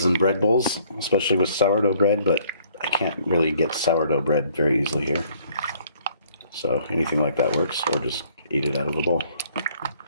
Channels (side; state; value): both; inverted; correlation -0.62